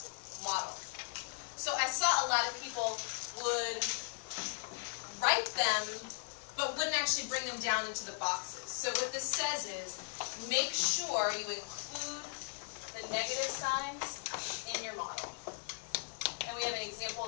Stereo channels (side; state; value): right; silent; 53 dB below the other